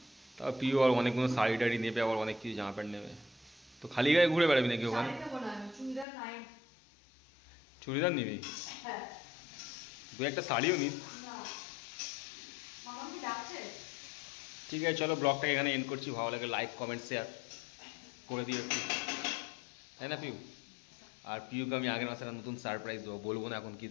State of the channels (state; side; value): drops out; right; at 6.1 s